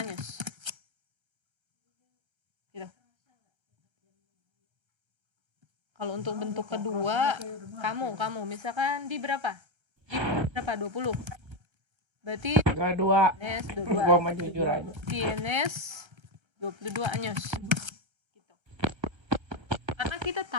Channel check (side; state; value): left; late; 1.3 ms